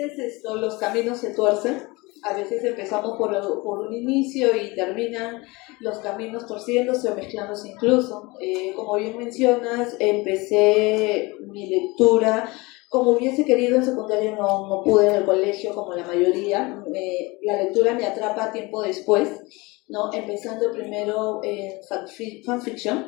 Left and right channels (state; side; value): quieter; right; 24.1 dB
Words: los caminos se tuercen, a veces empezamos por un inicio y terminan los caminos torciéndose o mezclándose incluso. Como bien mencionas, empecé mi lectura como hubiese querido en secundaria, no pude en el colegio como la mayoría. La lectura me atrapa tiempo después, ¿no? Empezando primero en